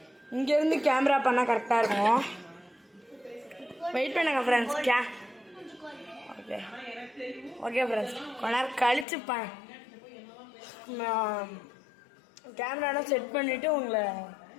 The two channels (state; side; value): drops out; right; at 9.1 s